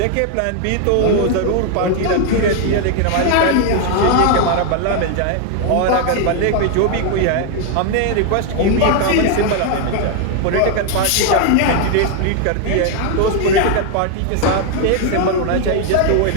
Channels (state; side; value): different; both; correlation 0.00